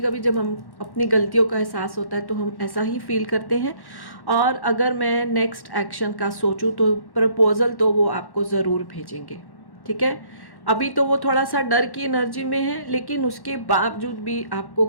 कभी जब हम अपनी गलतियों का एहसास होता है तो हम ऐसा ही फील करते हैं। और अगर मैं नेक्स्ट एक्शन का सोचूं तो प्रपोजल तो वो आपको ज़रूर भेजेंगे। ठीक है, अभी तो वो थोड़ा सा डर की एनर्जी में है, लेकिन उसके बावजूद भी आपको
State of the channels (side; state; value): right; late; 1.1 ms